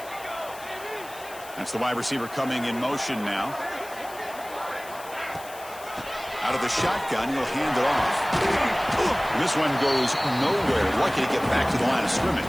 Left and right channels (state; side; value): noise; left; hiss, 17 dB below the sound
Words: That's the wide receiver coming in motion now. Out of the shotgun, he'll hand it off. This one goes nowhere. Lucky to get back to the line of